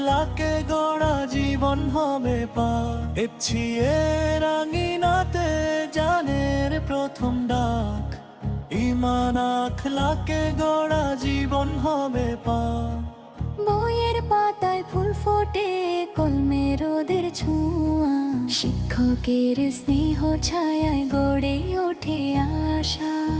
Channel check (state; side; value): identical; both; correlation 1.00